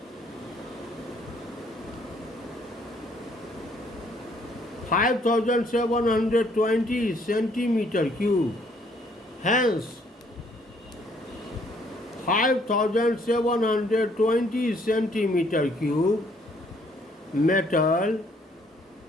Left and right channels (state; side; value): normal; both; correlation 0.65